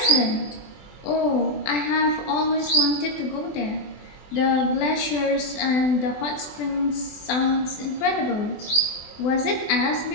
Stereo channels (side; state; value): right; late; 24 ms